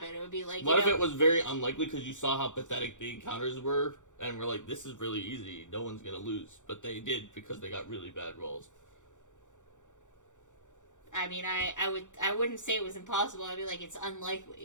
it would be like, what if it was very unlikely because you saw how pathetic the encounters were, and we're like, this is really easy, no one's going to lose. But they did because they got really bad rolls. I wouldn't say it was impossible. I'd be like, it's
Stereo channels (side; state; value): right; late; 0.85 ms